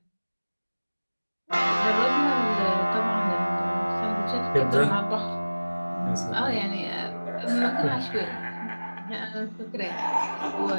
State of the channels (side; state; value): both; inverted; correlation -1.00